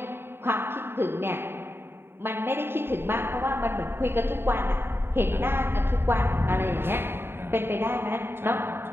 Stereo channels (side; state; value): left; late; 0.11 ms